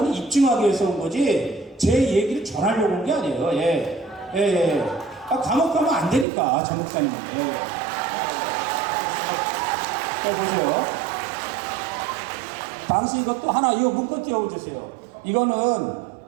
입증하기 위해서 온 거지, 제 얘기를 전하려고 온 게 아니에요. 예. 예, 예. 아, 감옥 가면 안 되니까, 전 목사님. 예. 자, 보세요. 당시 이것도 하나, 이거 문건 띄워주세요. 이거는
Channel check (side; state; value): left; drops out; at 6.2 s